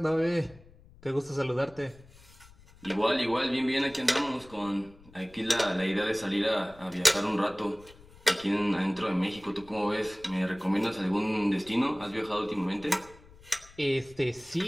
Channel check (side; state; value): left; noise; rumble, 24 dB below the sound